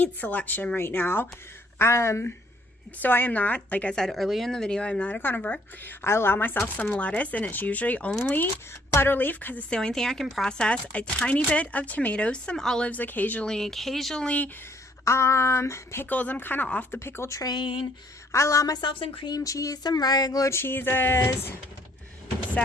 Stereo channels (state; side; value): normal; both; correlation 0.65